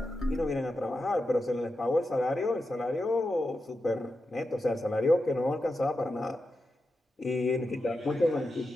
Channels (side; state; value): both; normal; correlation 0.89